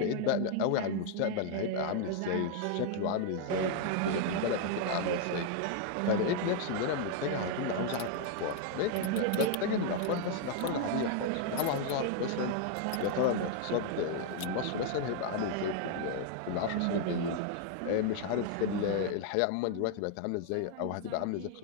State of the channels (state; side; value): different; both; correlation 0.00